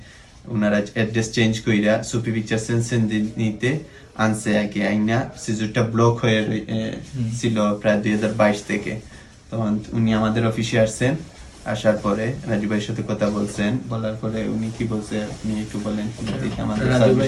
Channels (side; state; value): both; identical; correlation 1.00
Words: ওনারা অ্যাড্রেস চেঞ্জ কইরা সুপি পিকচার সেনসেনজেনিতে আনছে আগে আইনা সিজুরটা ব্লক হয়ে ছিল প্রায় 2022 থেকে। তখন উনি আমাদের অফিসে আসছেন, আসার পরে রাজু ভাইয়ের সাথে কথা বলছেন, বলার পরে উনি কি বলছে আপনি একটু বলেন আমাদের রাজু ভাই